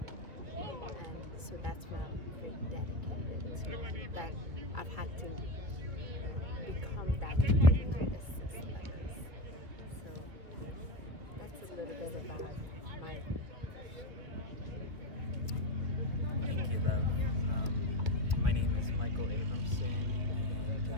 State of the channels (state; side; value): late; left; 2.5 ms